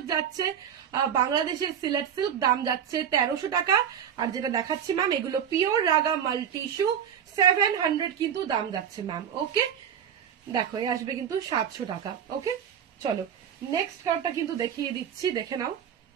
যাচ্ছে, বাংলাদেশের সিলেট সিল্ক, দাম যাচ্ছে 1300 টাকা। আর যেটা দেখাচ্ছি ম্যাম, এগুলো পিওর রাগা মাল্টি ইস্যু, 700 কিন্তু দাম যাচ্ছে ম্যাম। ওকে, দেখো এই আসবে কিন্তু 700 টাকা। ওকে, চলো নেক্সট কালারটা কিন্তু দেখিয়ে দিচ্ছি, দেখে নাও।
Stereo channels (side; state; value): left; quieter; 8.6 dB